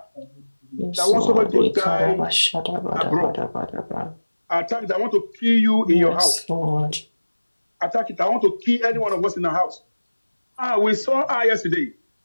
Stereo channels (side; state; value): both; inverted; correlation -1.00